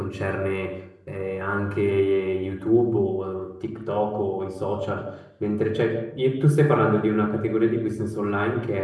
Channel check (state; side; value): identical; both; correlation 1.00